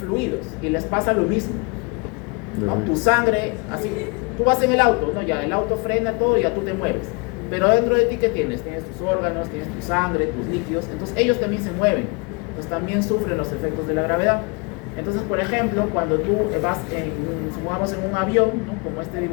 fluidos y les pasa lo mismo, ¿no? Tu sangre, así, tú vas en el auto, ¿no? Ya el auto frena todo y ya tú te mueves. Pero dentro de ti, ¿qué tienes? Tienes tus órganos, tienes tu sangre, tus líquidos, entonces ellos también se mueven, entonces también sufren los efectos de la gravedad. Entonces, por ejemplo, cuando tú vas, supongamos, en un avión, ¿no? Como este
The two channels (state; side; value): quieter; right; 30.2 dB